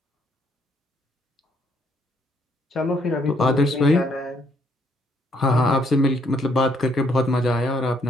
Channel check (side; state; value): both; normal; correlation 0.70